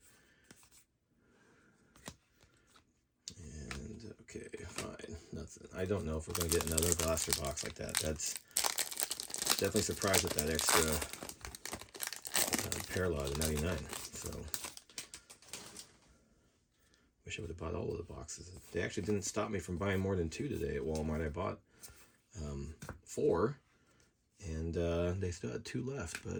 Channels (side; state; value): both; identical; correlation 1.00